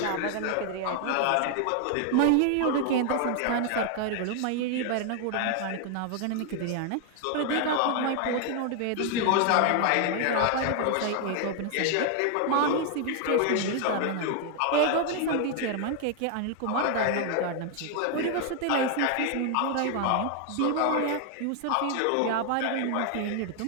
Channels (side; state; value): both; different; correlation 0.00